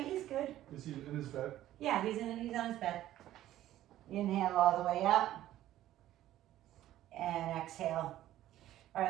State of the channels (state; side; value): quieter; left; 13.6 dB